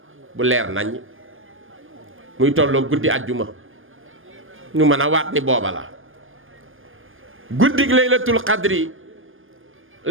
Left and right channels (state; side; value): late; left; 0.59 ms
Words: bu leer nañ muy tolloo guddi àjjuma ñu mën a waat ni booba la guddig laylatul qadri